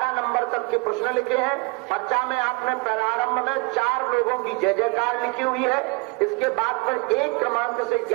नंबर तक के प्रश्न लिखे हैं। पर्चा में आपने प्रारंभ में 4 लोगों की जय जयकार लिखी हुई है। इसके बाद पर 1 क्रमांक से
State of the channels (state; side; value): quieter; left; 28.7 dB